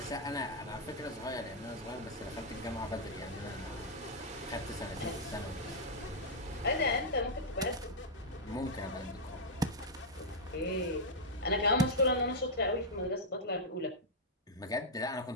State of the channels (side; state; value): both; normal; correlation -0.05